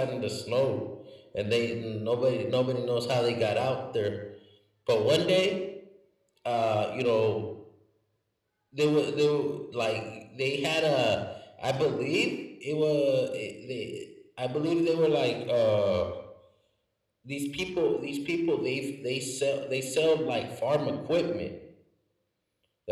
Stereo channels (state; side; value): identical; both; correlation 1.00